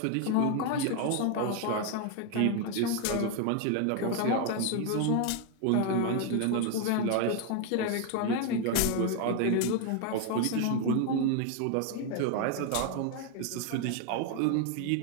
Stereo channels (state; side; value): different; both; correlation 0.01